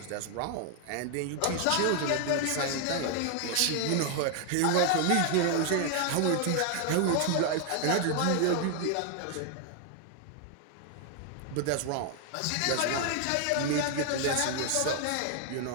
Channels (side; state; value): both; different; correlation 0.00